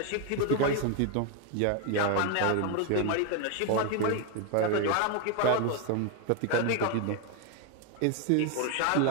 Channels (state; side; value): different; both; correlation 0.01